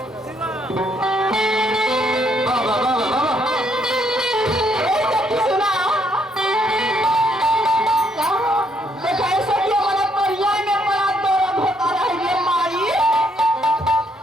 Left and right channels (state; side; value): normal; both; correlation 0.71